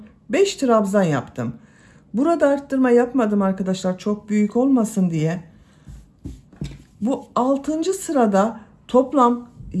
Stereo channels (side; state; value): both; identical; correlation 1.00